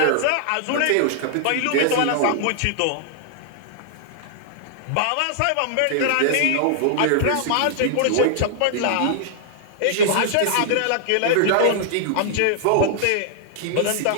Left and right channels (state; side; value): different; both; correlation -0.01